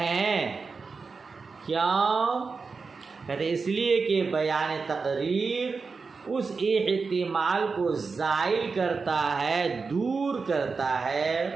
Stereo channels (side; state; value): left; quieter; 4.7 dB